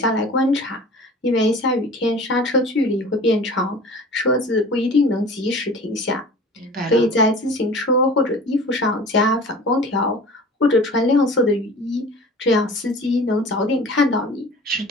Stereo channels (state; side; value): normal; both; correlation 0.41